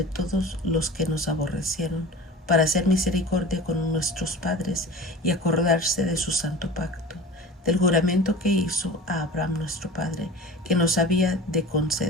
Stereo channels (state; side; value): normal; both; correlation 0.37